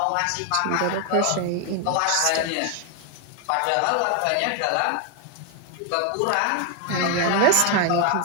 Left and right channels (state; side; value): different; both; correlation 0.01